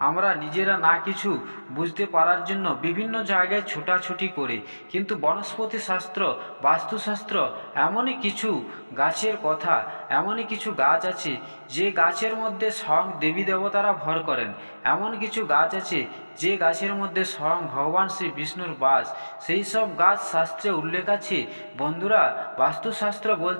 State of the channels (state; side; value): inverted; both; correlation -1.00